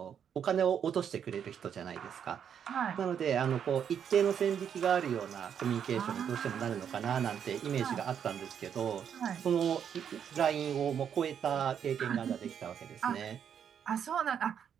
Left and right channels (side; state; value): left; quieter; 8.3 dB